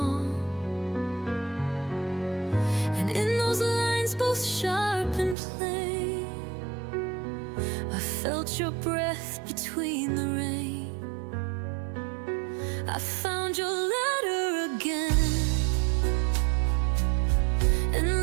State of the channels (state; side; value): drops out; left; at 5.4 s